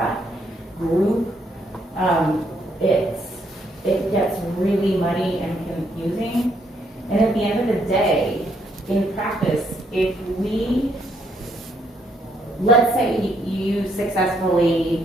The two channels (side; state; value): both; normal; correlation 0.72